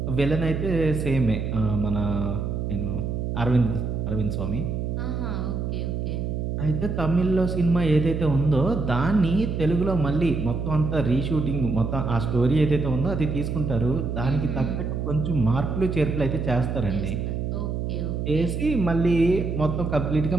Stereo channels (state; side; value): noise; right; hum, 2 dB below the sound